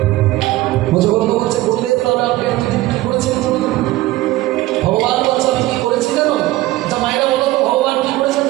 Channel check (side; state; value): left; quieter; 17.4 dB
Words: মুজবন্ধ বলছে বললেন তাহলে আপনি এতদিন কি করেছেন ভগবান বলছে আমি কি করেছি জানো যা মায়েরা বলো তো ভগবান কি করেছেন